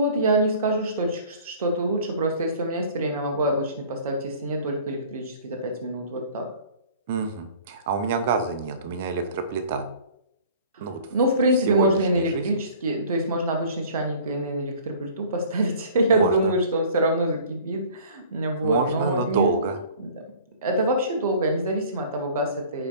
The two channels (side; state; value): both; inverted; correlation -0.48